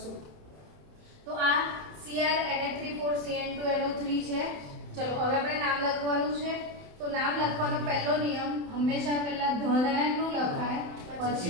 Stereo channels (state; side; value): late; left; 28 ms